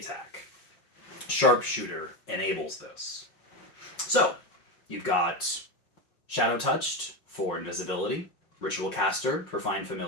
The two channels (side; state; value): right; late; 5.6 ms